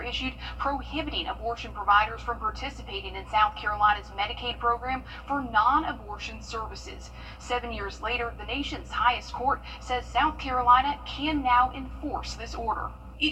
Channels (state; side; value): identical; both; correlation 1.00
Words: issued prohibiting abortion providers from participating in South Carolina's Medicaid program for non-abortion services. 7 years later, the nation's highest court says South Carolina can now enforce this order.